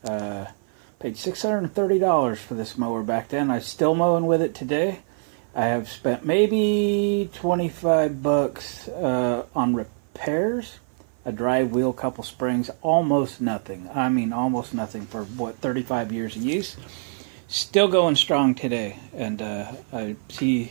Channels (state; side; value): silent; left; 55 dB below the other